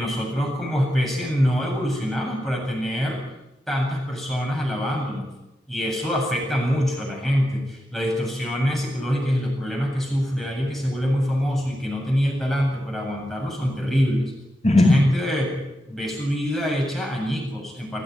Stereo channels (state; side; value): normal; both; correlation 0.87